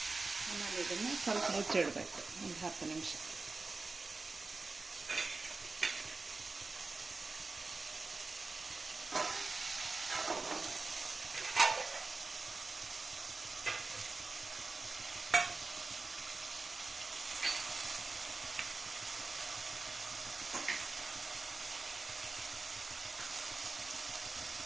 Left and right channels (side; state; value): left; quieter; 3.8 dB